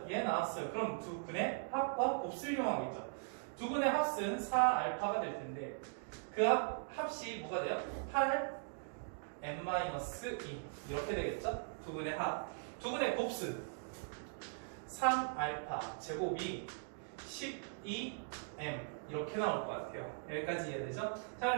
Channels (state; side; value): silent; left; digital silence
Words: 얘 나왔어요. 그럼 두 근의 합과 곱수를 이용하겠죠. 두 근의 합은 4알파가 될 텐데 그 합이 뭐가 돼요? 8m-2 이렇게 되겠죠? 두 근의 합. 두 근의 곱수 3알파 제곱이 12m 이렇게 나올 것 같아요. 여기까지 이해되죠? 자,